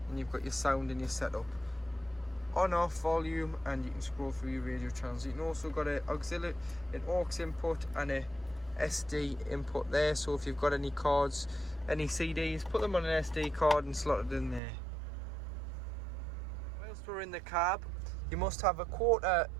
and you've got your sound and your setup. On off volume, and you can scroll through your radio channels. You can also got an auxiliary, an aux input and a SD input there, so if you've got any cards, any CDs, put them on an SD card and slot it in there. Whilst we're in the cab, you must have a quarter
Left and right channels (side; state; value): left; drops out; at 14.6 s